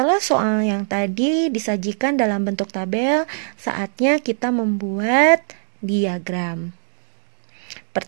soal yang tadi disajikan dalam bentuk tabel, saatnya kita membuat diagram.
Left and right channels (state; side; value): silent; left; digital silence